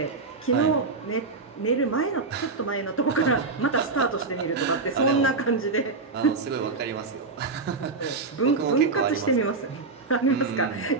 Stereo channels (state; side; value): quieter; left; 4.0 dB